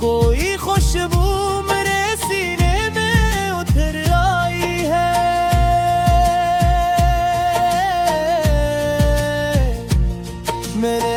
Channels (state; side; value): identical; both; correlation 1.00